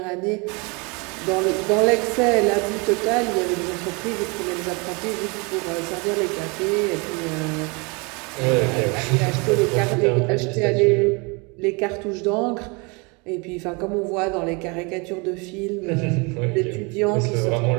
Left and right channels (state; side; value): quieter; left; 29.8 dB